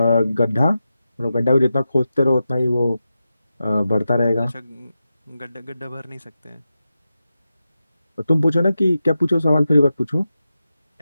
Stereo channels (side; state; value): both; inverted; correlation -0.91